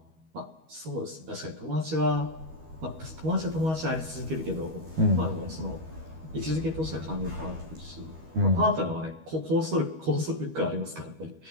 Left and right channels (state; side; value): late; left; 13 ms